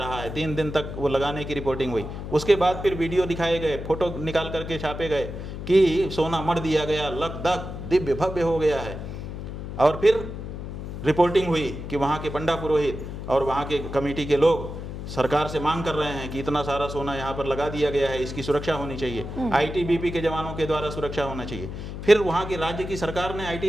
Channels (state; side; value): noise; left; hum, 8 dB below the sound